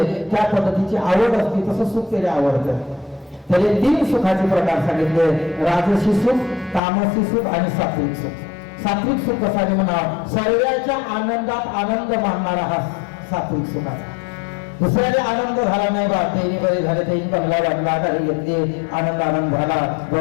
त्या पद्धतीची आवड असते तसं सुख त्याला आवडतं. त्याने 3 सुखाचे प्रकार सांगितले. राजसी सुख, तामसी सुख आणि सात्विक सुख. सात्विक सुख कसा म्हणा सर्वांच्या आनंदात आनंद मानणारा हा सात्विक सुखाचा. दुसऱ्याने आनंद झाला नाही बा त्यांनी बरे झाले त्यांनी बंगला बांधला गाडी घेतली आनंद झाला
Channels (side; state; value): right; drops out; at 6.8 s